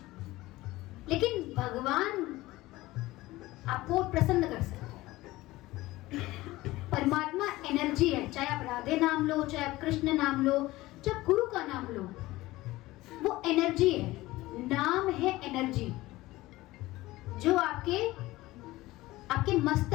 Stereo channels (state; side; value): quieter; right; 18.4 dB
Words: लेकिन भगवान आपको प्रसन्न कर सकता है। परमात्मा एनर्जी है, चाहे आप राधे नाम लो, चाहे आप कृष्ण नाम लो, जब गुरु का नाम लो, वो एनर्जी है, नाम है एनर्जी, जो आपके